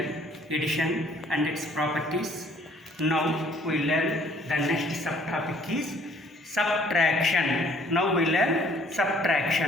addition and its properties. Now we learn the next subtopic is subtraction. Now we learn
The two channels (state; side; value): normal; both; correlation 0.60